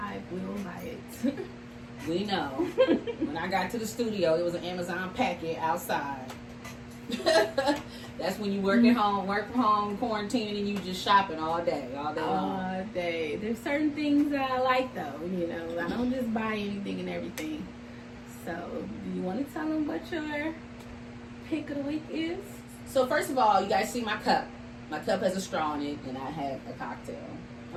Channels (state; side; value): identical; both; correlation 1.00